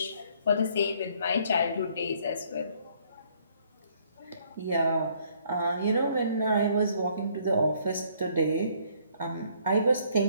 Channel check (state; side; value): inverted; both; correlation -0.64